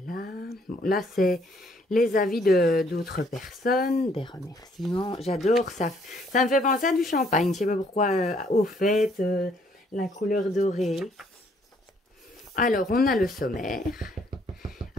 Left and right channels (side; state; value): both; normal; correlation 0.66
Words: Bon, là, c'est les avis d'autres personnes, des remerciements. J'adore ça. Ça me fait penser à du champagne. Je ne sais pas pourquoi, au fait, la couleur dorée. Alors, on a le sommaire.